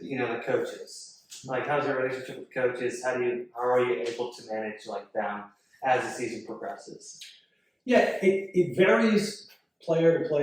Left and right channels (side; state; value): both; identical; correlation 1.00